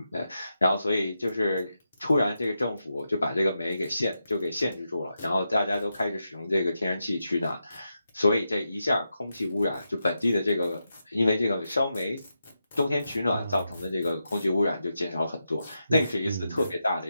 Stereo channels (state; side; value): inverted; both; correlation -0.87